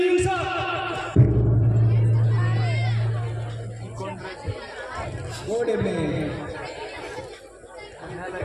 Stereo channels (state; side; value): identical; both; correlation 1.00